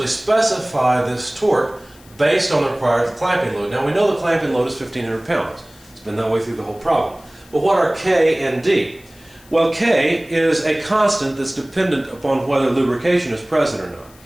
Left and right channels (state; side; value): noise; left; hiss, 26 dB below the sound